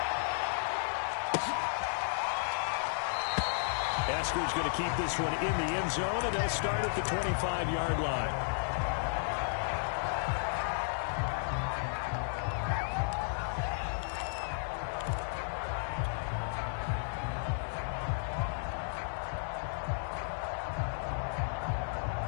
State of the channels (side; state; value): right; silent; digital silence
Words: Esker's going to keep this one in the end zone, and they'll start at the 25-yard line.